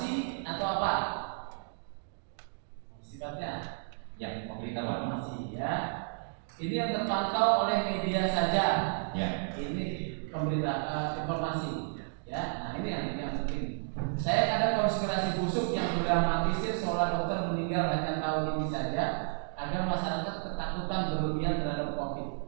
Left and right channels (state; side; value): silent; left; digital silence